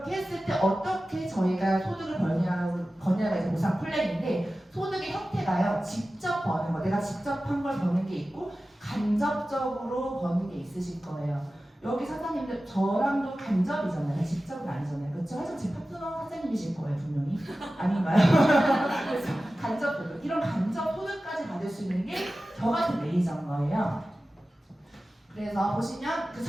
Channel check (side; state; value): both; normal; correlation 0.95